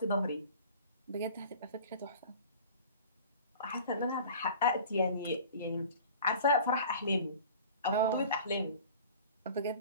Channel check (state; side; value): inverted; both; correlation -0.43